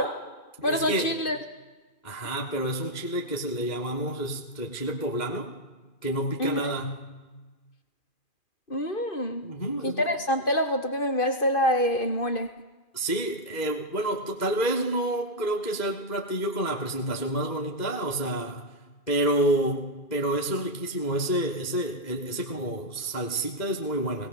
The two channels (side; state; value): right; late; 2.4 ms